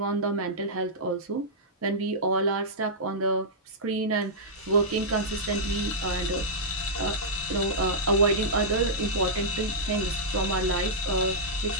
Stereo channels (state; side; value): normal; both; correlation -0.11